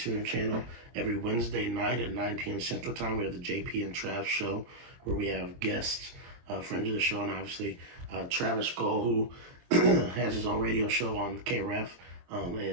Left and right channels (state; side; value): late; left; 23 ms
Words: channel. Every Wednesday night at 9 p.m. Central Time, we have the JP and Trav show, where we have guests, friends of the show, and obviously Travis Skull, who has his own radio show on KREF,